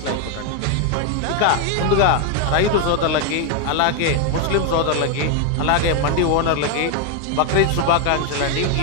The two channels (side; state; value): both; different; correlation 0.01